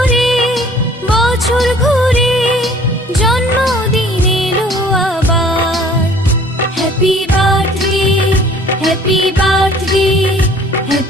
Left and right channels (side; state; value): both; normal; correlation 0.53